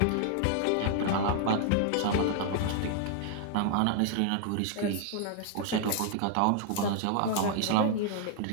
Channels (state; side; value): different; both; correlation 0.00